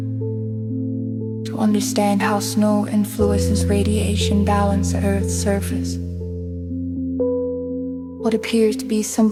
to understand how snow influences radiation balance at Earth's surface. What appears to be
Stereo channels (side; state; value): both; identical; correlation 1.00